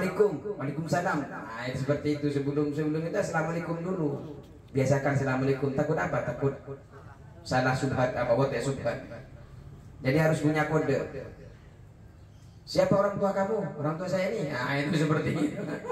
waalaikumsalam. Nah itu seperti itu, sebelum itu assalamualaikum dulu. Biasakan assalamualaikum. Takut apa? Takut salah subhat apa buat ya subhat. Jadi harus punya kode. Siapa orang tua kamu? Orang tua saya ini. Nah itu seperti itu.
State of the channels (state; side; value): identical; both; correlation 1.00